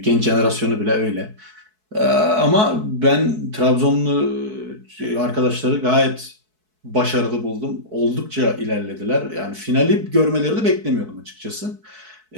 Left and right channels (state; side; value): late; left; 4.6 ms